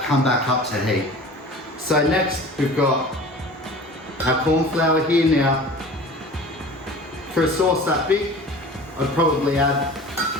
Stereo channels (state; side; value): normal; both; correlation 0.40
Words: come back up to heat. So next we've got our corn flour here. Now, for a sauce that big, I'd probably add